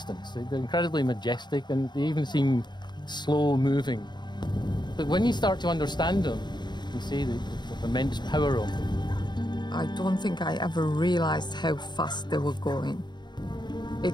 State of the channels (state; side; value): late; right; 0.21 ms